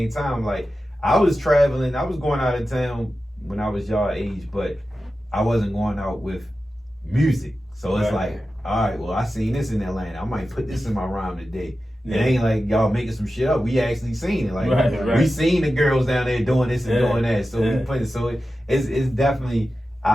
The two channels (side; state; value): both; normal; correlation 0.93